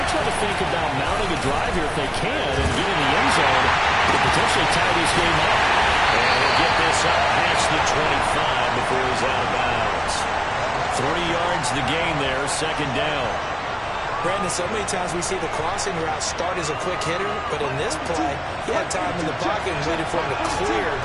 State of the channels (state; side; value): identical; both; correlation 1.00